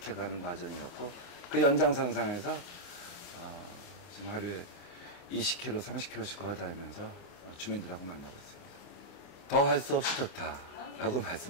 과정이었고, 그 연장선상에서 지금 하루에 20km, 30km씩 걸어다니면서 주민들하고 만나고 있습니다. 더 할 수 없이 좋다라고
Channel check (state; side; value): late; right; 29 ms